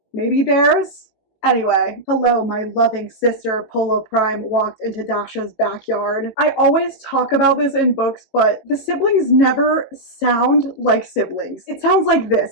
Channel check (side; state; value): right; late; 18 ms